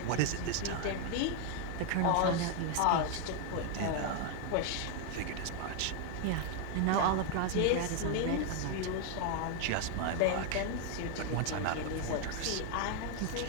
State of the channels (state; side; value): different; both; correlation 0.00